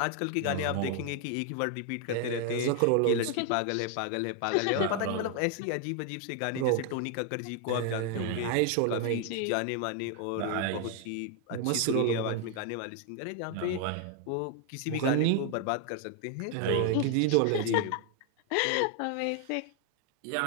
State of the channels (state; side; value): different; both; correlation 0.00